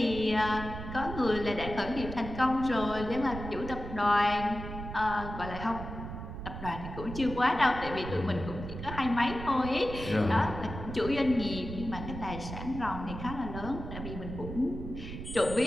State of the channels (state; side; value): noise; right; rumble, 8 dB below the sound